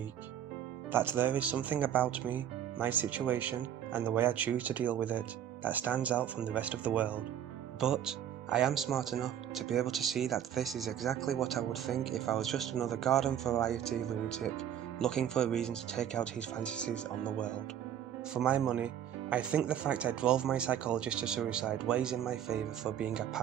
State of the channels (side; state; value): left; quieter; 10.0 dB